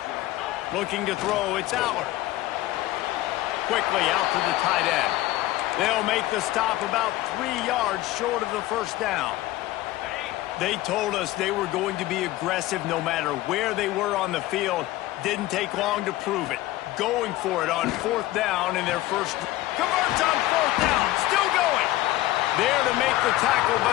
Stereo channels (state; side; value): quieter; right; 16.5 dB